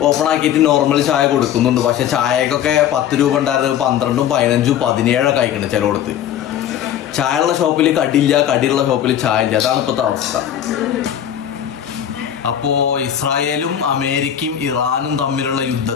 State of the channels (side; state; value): right; quieter; 10.1 dB